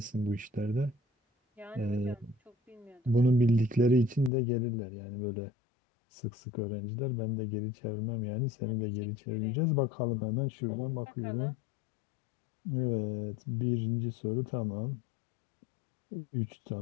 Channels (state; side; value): drops out; right; at 4.3 s